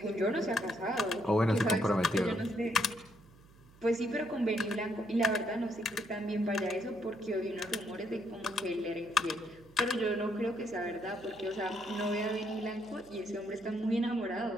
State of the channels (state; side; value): noise; right; hum, 25 dB below the sound